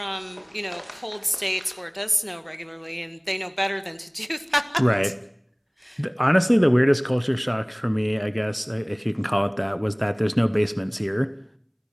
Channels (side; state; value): both; identical; correlation 1.00